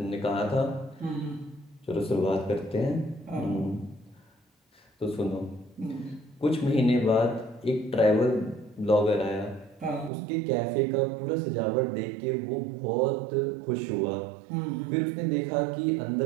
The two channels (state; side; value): drops out; left; at 10.1 s